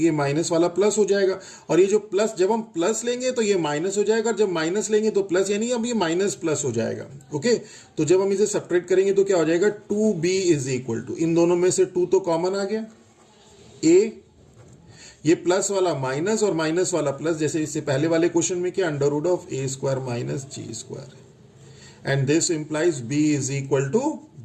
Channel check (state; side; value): identical; both; correlation 1.00